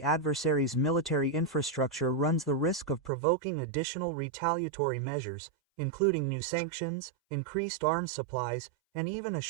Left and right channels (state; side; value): drops out; left; at 3.1 s